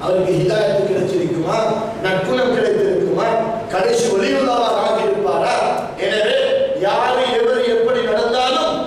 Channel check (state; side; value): identical; both; correlation 1.00